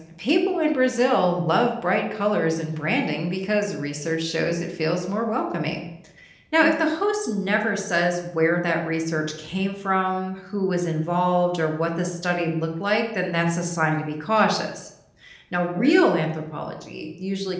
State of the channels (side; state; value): both; identical; correlation 1.00